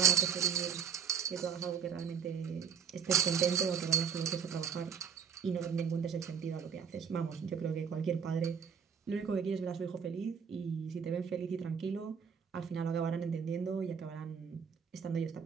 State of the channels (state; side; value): quieter; left; 7.1 dB